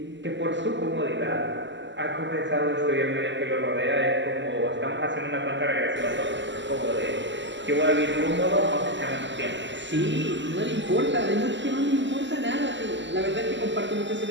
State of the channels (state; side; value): late; left; 0.54 ms